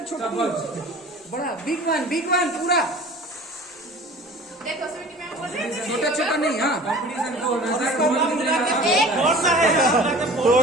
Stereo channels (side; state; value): both; normal; correlation 0.43